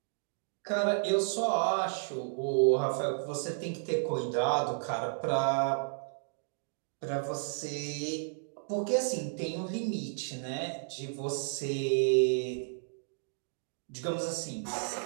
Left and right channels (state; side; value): silent; left; digital silence